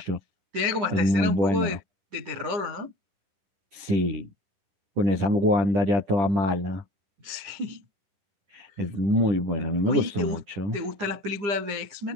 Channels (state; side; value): late; left; 10 ms